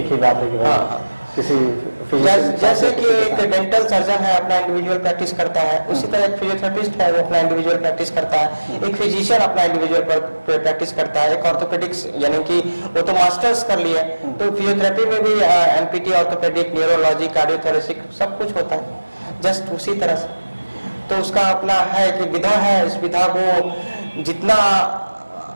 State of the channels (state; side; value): inverted; both; correlation -1.00